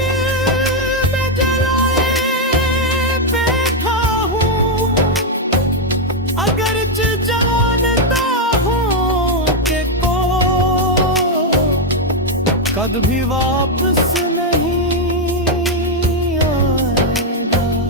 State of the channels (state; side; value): normal; both; correlation 0.01